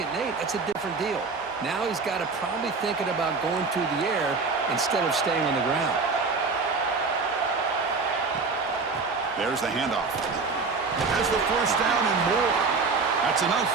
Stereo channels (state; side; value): quieter; left; 4.3 dB